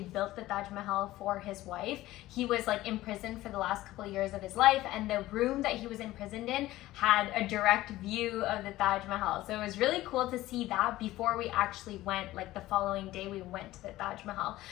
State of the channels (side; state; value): right; quieter; 16.4 dB